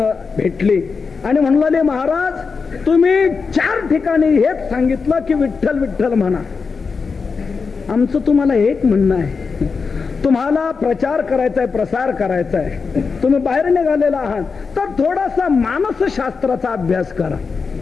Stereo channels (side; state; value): right; quieter; 5.0 dB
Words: भेटली आणि म्हणले, महाराज तुम्ही 4 ठिकाणी हेच सांगितलं की विठ्ठल विठ्ठल म्हणा. आमचं तुम्हाला एक म्हणणं आहे, तुम्हाला प्रचार करायचा आहे, प्रसार करायचा आहे, तुम्ही बाहेर निघालेला आहात तर थोडासा मानसशास्त्राचा अभ्यास करा,